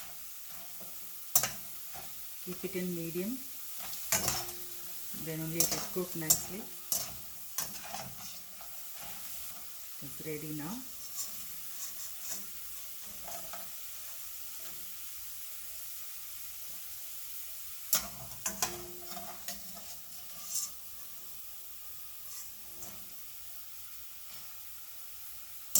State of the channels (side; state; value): both; identical; correlation 1.00